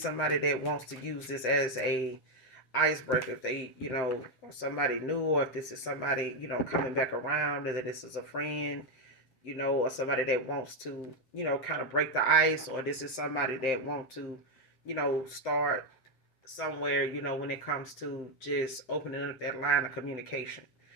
that wants to use this as a icebreaker. If they, or somebody new, or if this is somebody, coming back around, whether this is a friend, or somebody that wants to, kind of break the ice, or this is somebody that wants to, start somewhere, when it comes to just opening up that line of communication.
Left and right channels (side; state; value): right; late; 7.7 ms